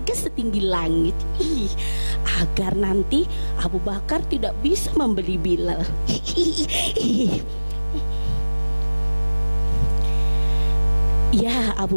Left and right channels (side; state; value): both; inverted; correlation -1.00